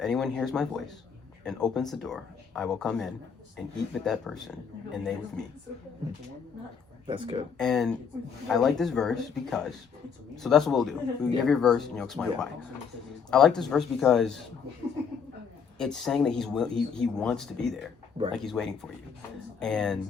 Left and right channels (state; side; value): quieter; right; 6.4 dB